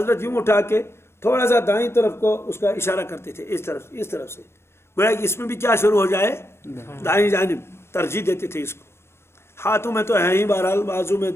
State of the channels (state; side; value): late; right; 0.12 ms